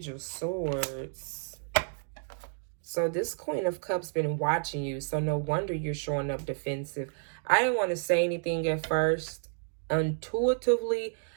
of Swords. So this Queen of Cups been watching you, so no wonder you're showing up defensive. I didn't want to say anything at first. Intuitively,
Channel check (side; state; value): left; silent; 57 dB below the other